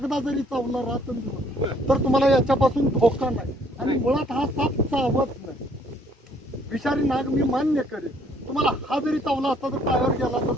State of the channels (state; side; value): normal; both; correlation 0.63